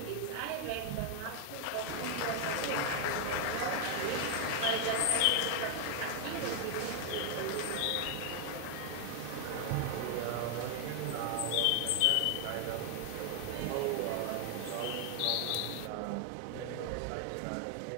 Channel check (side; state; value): both; different; correlation 0.00